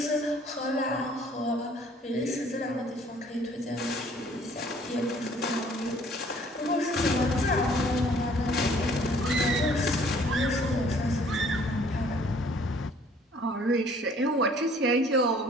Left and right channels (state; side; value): normal; both; correlation 0.57